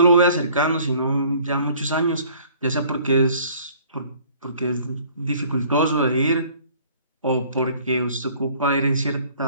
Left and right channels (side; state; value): both; inverted; correlation -0.54